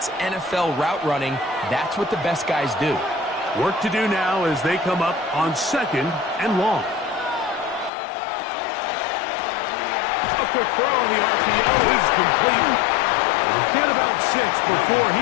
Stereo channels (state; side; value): drops out; right; at 7.9 s